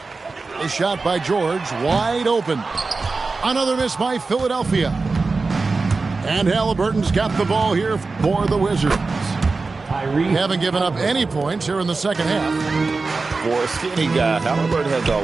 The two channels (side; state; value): left; quieter; 4.0 dB